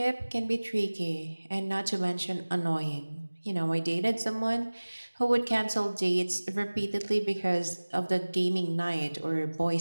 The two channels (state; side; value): inverted; both; correlation -1.00